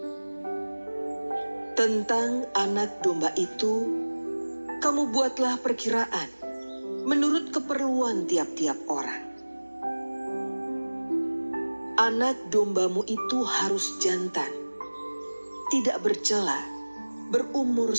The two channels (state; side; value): inverted; both; correlation -1.00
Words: Tentang anak domba itu, kamu buatlah perkiraan menurut keperluan tiap-tiap orang. Anak dombamu itu harus jantan, tidak bercela, berumur